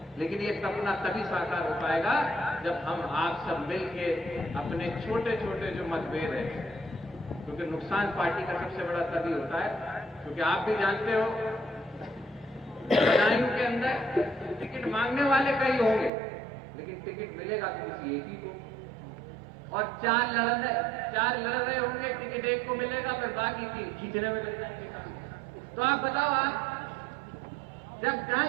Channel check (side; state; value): left; drops out; at 16.1 s